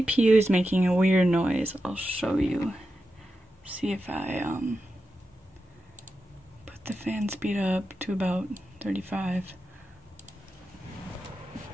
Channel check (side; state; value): both; normal; correlation 0.90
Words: is making a weird noise. I'll show you. See if I put the fan speed up to about 35.